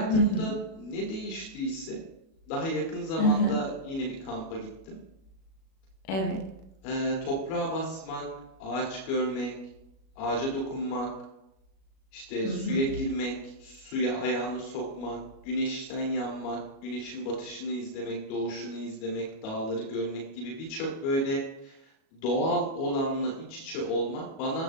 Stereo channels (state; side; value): late; right; 37 ms